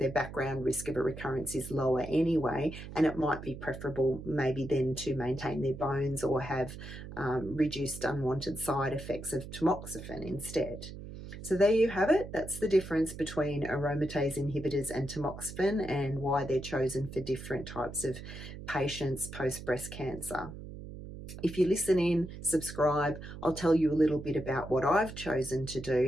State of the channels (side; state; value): right; noise; hum, 11 dB below the sound